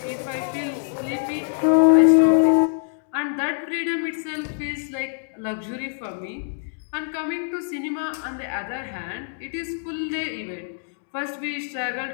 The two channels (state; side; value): silent; right; digital silence